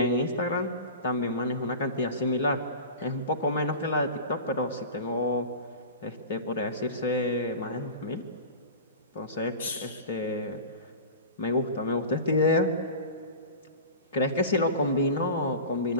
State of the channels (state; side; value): inverted; both; correlation -0.33